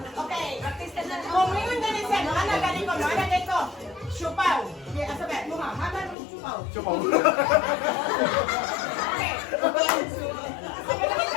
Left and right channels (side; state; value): right; drops out; at 6.2 s